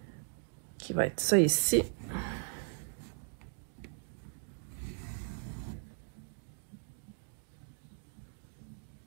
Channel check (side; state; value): left; silent; 53 dB below the other